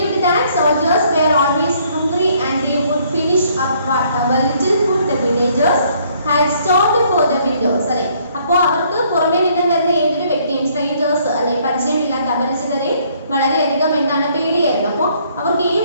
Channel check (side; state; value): both; inverted; correlation -0.65